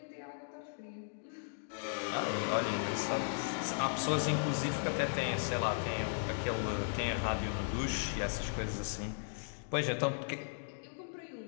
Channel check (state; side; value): silent; right; digital silence